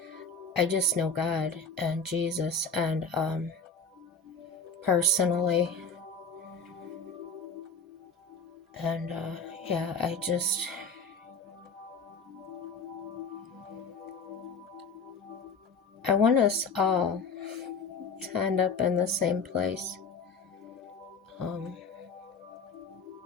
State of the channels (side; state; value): right; quieter; 3.9 dB